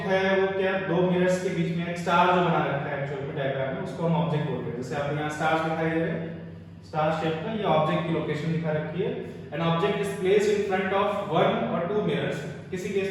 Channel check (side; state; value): both; identical; correlation 1.00